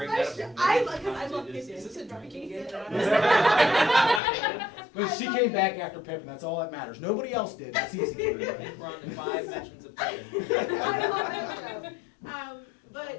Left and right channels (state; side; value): drops out; right; at 4.2 s